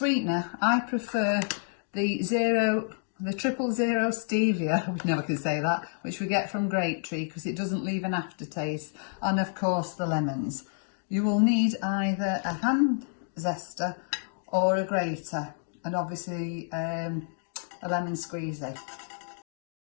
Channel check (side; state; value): right; silent; digital silence